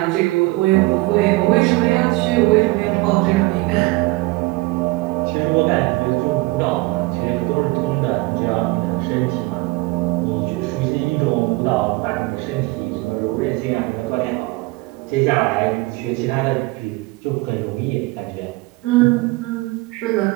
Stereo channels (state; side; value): quieter; left; 22.5 dB